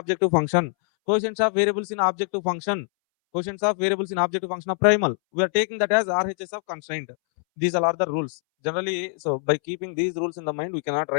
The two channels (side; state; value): right; silent; 62 dB below the other